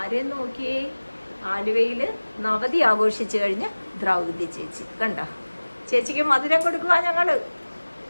ആരെയും നോക്കിയേ. ആലുവയിൽ നവതി ആഘോഷിച്ചു കഴിഞ്ഞ് ദ്രൗപദി ചേച്ചി കണ്ടോ. ചേച്ചിക്ക് മധുരം കൊടുക്കുക ഞങ്ങള്.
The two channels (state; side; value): inverted; both; correlation -1.00